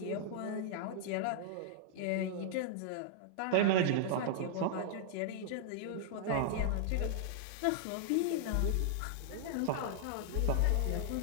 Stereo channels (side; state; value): both; different; correlation -0.01